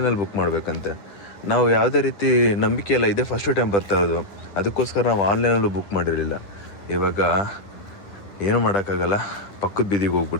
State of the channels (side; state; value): right; late; 10 ms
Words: ಬುಕ್ ಮಾಡಬೇಕಂತೆ. ನಾವು ಯಾವುದೇ ರೀತಿ ನಂಬಿಕೆ ಎಲ್ಲ ಇದೆ, ಫಸ್ಟ್ ಟೈಮ್ ಬರ್ತಾ ಇರೋದು, ಅದಕ್ಕೋಸ್ಕರ ನಾವು ಆನ್ಲೈನಲ್ಲೂ ಬುಕ್ ಮಾಡಿರಲಿಲ್ಲ. ಇವಾಗ ಏನೂ ಮಾಡೋಕ್ಕಾಗಲ್ಲ, ಪಕ್ಕದ ಬೀದಿಗೆ